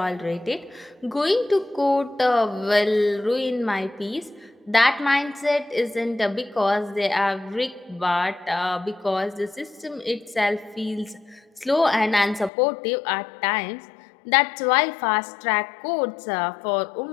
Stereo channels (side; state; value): right; drops out; at 12.5 s